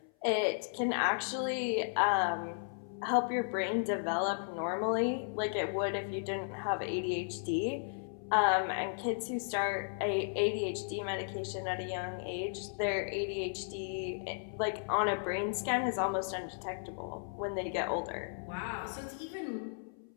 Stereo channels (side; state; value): right; silent; 55 dB below the other